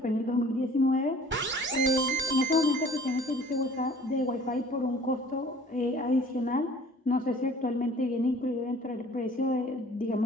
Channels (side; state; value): both; normal; correlation 0.51